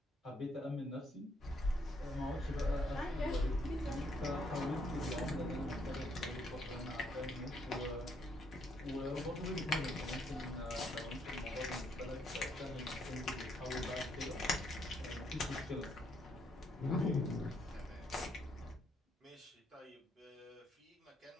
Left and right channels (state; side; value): normal; both; correlation 0.72